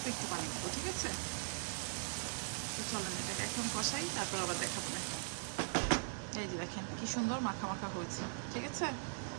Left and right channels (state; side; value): silent; left; digital silence